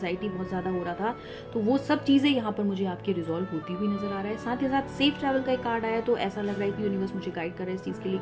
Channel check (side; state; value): both; identical; correlation 1.00